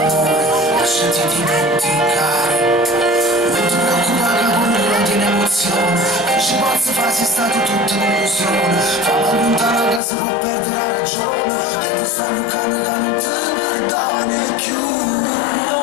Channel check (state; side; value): drops out; right; at 10.0 s